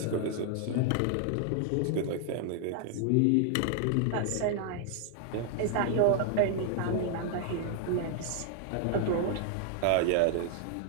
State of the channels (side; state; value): both; different; correlation 0.00